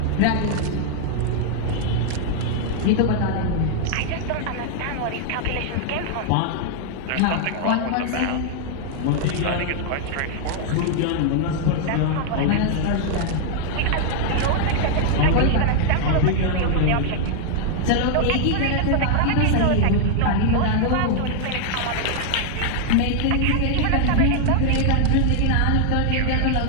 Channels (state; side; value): different; both; correlation 0.00